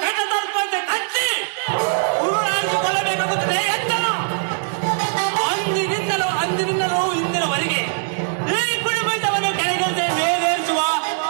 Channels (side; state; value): left; silent; digital silence